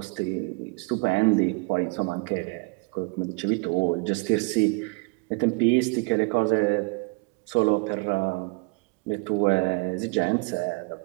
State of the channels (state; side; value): quieter; left; 29.7 dB